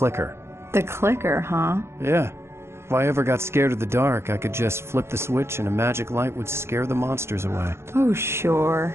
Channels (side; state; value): left; late; 0.12 ms